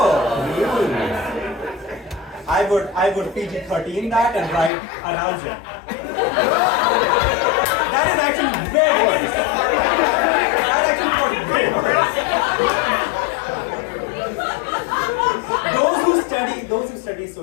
I would PG-13 that and write arousal. That is actually very worse. That actually got way worse. Those who study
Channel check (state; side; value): drops out; right; at 4.7 s